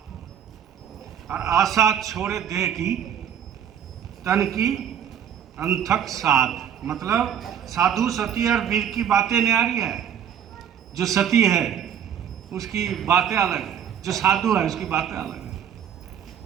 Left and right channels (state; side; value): quieter; left; 9.0 dB